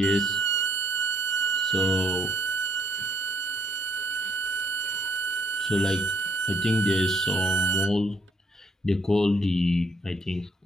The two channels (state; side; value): normal; both; correlation 0.68